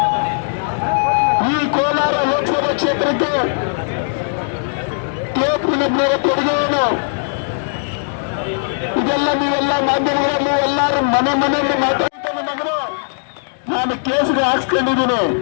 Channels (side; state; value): right; silent; digital silence